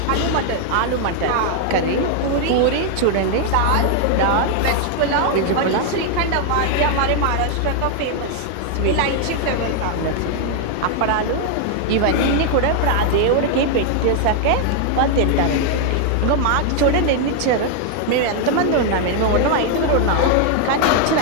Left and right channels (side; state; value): both; different; correlation 0.00